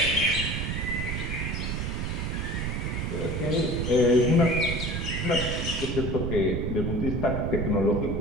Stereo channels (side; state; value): right; noise; rumble, 2 dB below the sound